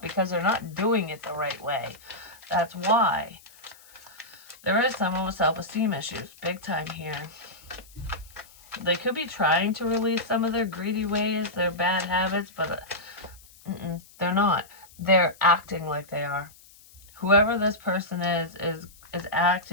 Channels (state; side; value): noise; left; hiss, 24 dB below the sound